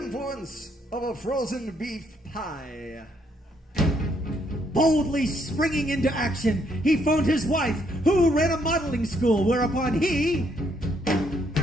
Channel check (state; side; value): normal; both; correlation 0.72